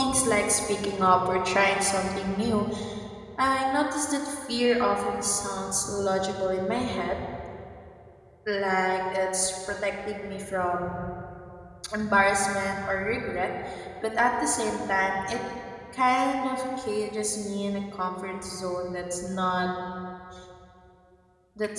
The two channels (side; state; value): both; identical; correlation 1.00